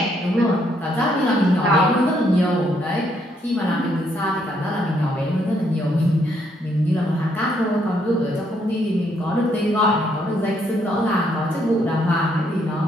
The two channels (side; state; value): both; normal; correlation 0.72